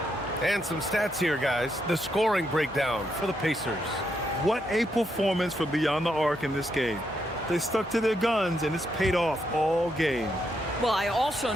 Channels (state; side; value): normal; both; correlation 0.79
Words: And some stats here, guys. The scoring breakdown for the Pacers. What a performance from beyond the arc in this game. They stuck to their guns, and it's paid off all game. Well, I also